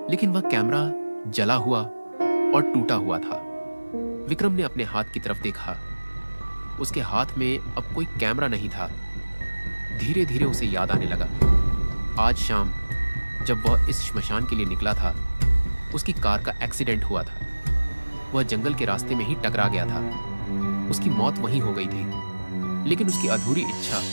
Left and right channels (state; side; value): inverted; both; correlation -1.00